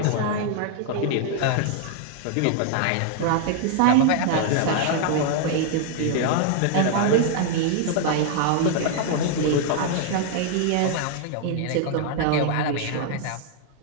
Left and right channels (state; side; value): different; both; correlation 0.00